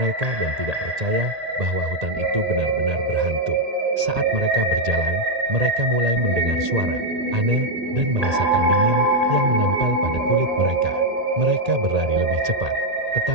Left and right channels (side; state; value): left; late; 1.8 ms